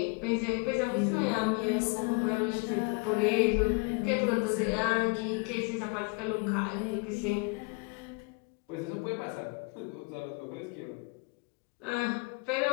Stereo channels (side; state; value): right; quieter; 31.7 dB